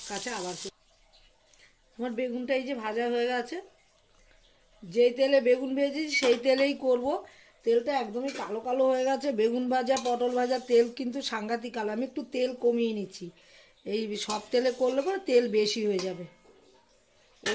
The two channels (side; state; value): both; identical; correlation 1.00